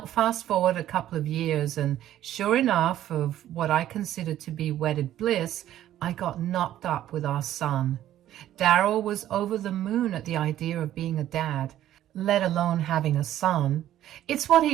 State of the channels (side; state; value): left; quieter; 12.5 dB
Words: fast forward a couple of years, and sure enough, of what I considered to be wedded bliss, I got knocked up with our son. Daryl was over the moon at the idea of being a dad, let alone having a son. It's what